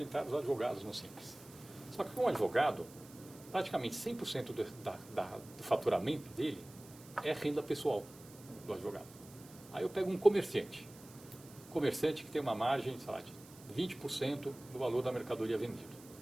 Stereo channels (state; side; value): noise; right; hiss, 21 dB below the sound